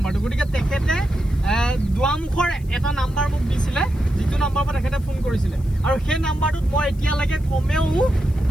গতিকে তেখেতে দুৱামুখৰ এটা নাম্বাৰ মোক দিছিলে যিটো নাম্বাৰৰ পৰা তেখেতে ফোন কৰিছিলে আৰু সেই নাম্বাৰটোত মই এতিয়ালৈকে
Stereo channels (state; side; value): noise; left; hiss, 27 dB below the sound